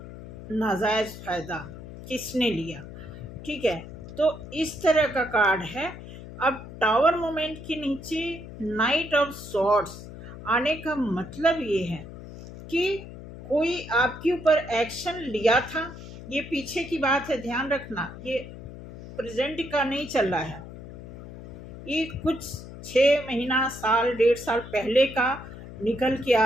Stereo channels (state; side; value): noise; left; hum, 13 dB below the sound